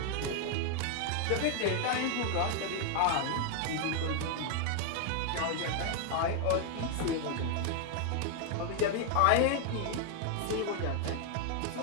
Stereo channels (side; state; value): both; different; correlation 0.00